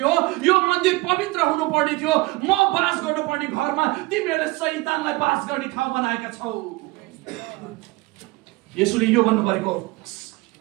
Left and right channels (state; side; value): quieter; left; 22.1 dB